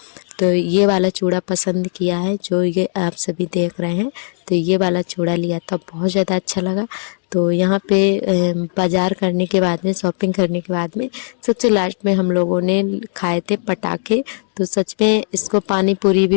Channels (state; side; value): silent; right; digital silence